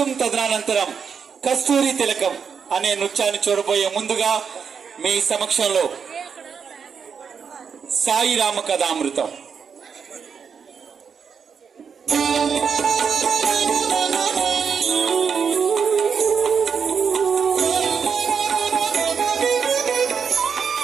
తదనంతరం కస్తూరి తిలకం అనే నృత్యాన్ని చూడబోయే ముందుగా మీ సమక్షంలో సాయి రామ కథామృతం.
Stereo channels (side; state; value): left; quieter; 6.5 dB